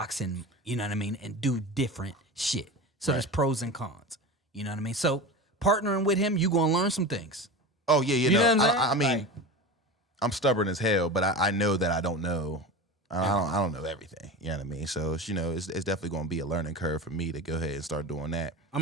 and, you know what I mean, and do different shit. So there's pros and cons. You know what I mean? So partnering with him, you gonna learn some things. Oh yeah, You know what I'm saying? I mean, Like- I'm stubborn as hell, but I know that I don't know. I don't know everything. You know what I mean? So it's, you know, it's definitely going to be a learning curve for me to go ahead and start doing that.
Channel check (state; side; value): normal; both; correlation 0.29